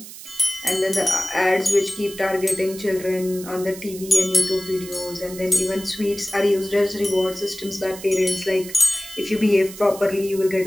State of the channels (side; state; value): right; noise; hiss, 14 dB below the sound